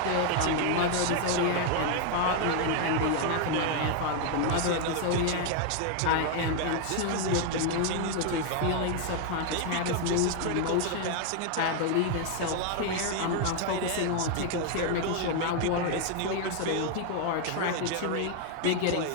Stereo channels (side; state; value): both; different; correlation 0.00